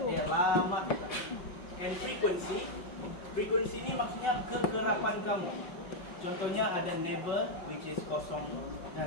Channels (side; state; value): right; late; 5.3 ms